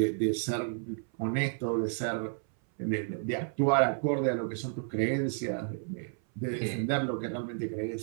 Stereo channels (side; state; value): left; silent; 57 dB below the other